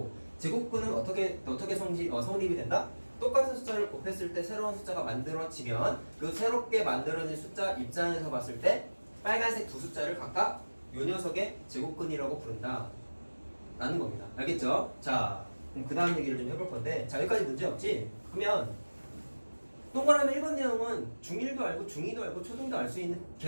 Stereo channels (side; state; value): both; inverted; correlation -1.00